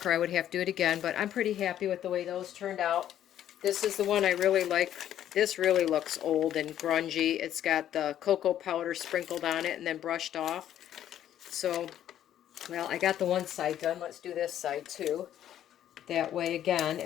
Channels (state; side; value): quieter; right; 11.1 dB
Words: I would have to do it again, but I'm pretty happy with the way those turned out. This is the one I really like. This really looks old and grungy. It's got the cocoa powder sprinkled on it and then brushed off. So, well, I got the one side done. Let's do this side too. That way, again,